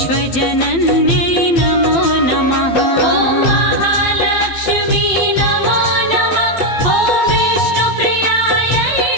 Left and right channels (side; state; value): right; late; 12 ms